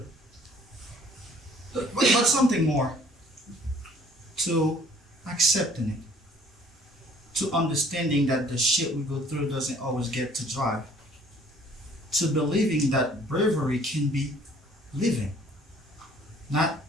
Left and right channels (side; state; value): both; normal; correlation 0.56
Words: But something more. To accepting it. To understanding that the shit we go through doesn't always get to drive. To believing that bravery can be living. Not